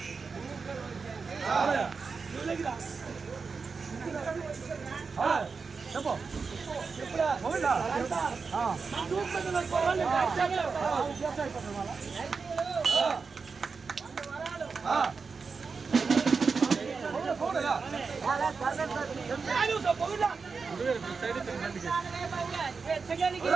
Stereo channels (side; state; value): left; quieter; 4.9 dB